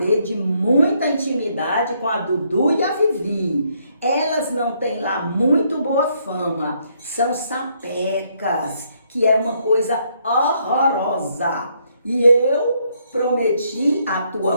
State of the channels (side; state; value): both; inverted; correlation -0.72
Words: de muita intimidade com a Dudu e a Vivi. Elas não têm lá muito boa fama, são sapecas, que é uma coisa horrorosa. E eu prometi à